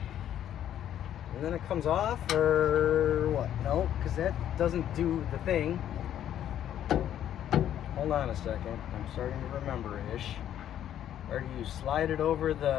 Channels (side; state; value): right; quieter; 10.8 dB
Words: and then it comes off, or what? No, because that doesn't do the thing. Hold on a second. I'm starting to remember-ish. Or do you slide it over